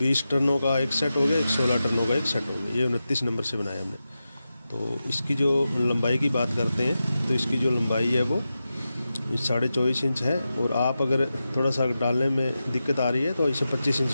टर्नों का एक सेट हो गया, एक 16 टर्नों का एक सेट हो गया। ये 29 नंबर से बनाया हमने। तो इसकी जो लंबाई की बात करते हैं तो इसकी जो लंबाई है वो 24.5 इंच है, और आप अगर थोड़ा सा डालने में दिक्कत आ रही है तो इसे 25 इंच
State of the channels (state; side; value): inverted; both; correlation -0.91